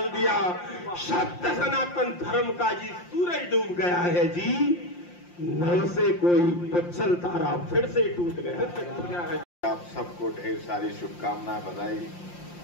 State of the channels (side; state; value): right; late; 5.7 ms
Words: दिया। सत्य सनातन धर्म का जी सूरज डूब गया है जी, नव से कोई पुच्छल तारा फिर से टूट गया है। आप सबको ढेर सारी शुभकामनाएं, बधाई।